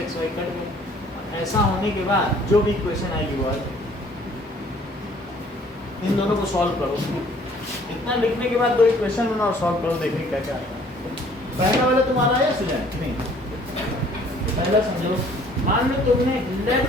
xy कट गए। ऐसा होने के बाद जो भी इक्वेशन आएगी वो आएगी। इन दोनों को सॉल्व करो, इतना लिखने के बाद 2 इक्वेशन बनाओ और सॉल्व करो, देखिए क्या क्या आएगा। पहला वाला तुम्हारा आया स्टूडेंट नहीं, पहला समझो, मान लो तुमने let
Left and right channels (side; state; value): both; normal; correlation 0.57